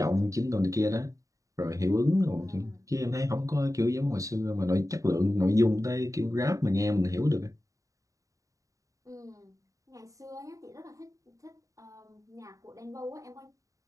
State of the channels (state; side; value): late; left; 0.16 ms